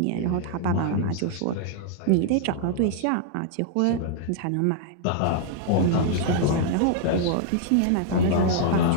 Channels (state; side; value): different; both; correlation -0.01